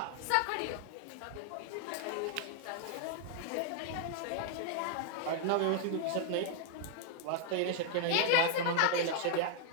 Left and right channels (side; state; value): both; different; correlation 0.00